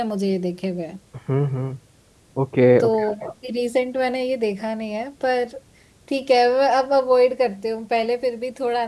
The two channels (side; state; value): both; identical; correlation 1.00